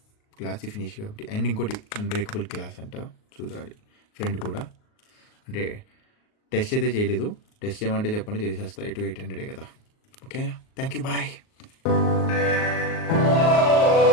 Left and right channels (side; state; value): right; late; 38 ms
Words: Glossy finish కాబట్టి. అండ్ ఇంకోటి అన్బ్రేకబుల్ గ్లాస్ అంట, చూడాలి. ఫ్రెండ్ కూడా అంటే టెస్ట్ అయితే చేయలేదు. టెస్ట్ చేయమంటే చెప్పండి, చేసేస్తా. 800 కదా. ఓకేనా, థ్యాంక్ యూ, బాయ్.